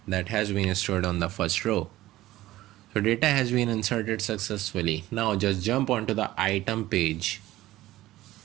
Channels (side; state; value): left; quieter; 16.2 dB